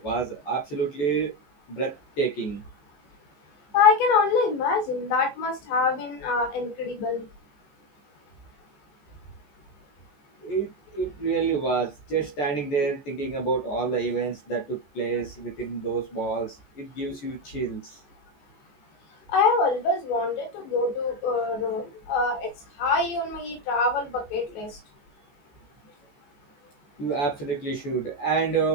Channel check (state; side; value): late; right; 14 ms